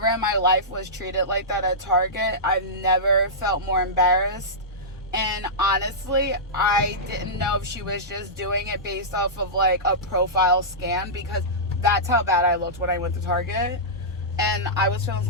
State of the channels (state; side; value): normal; both; correlation -0.15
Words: in my life was treated like that at Target. I've never felt more embarrassed. And honestly, I didn't know if she was just doing it based off of like a profile scan, because that's how bad I looked when I went to Target. And I was feeling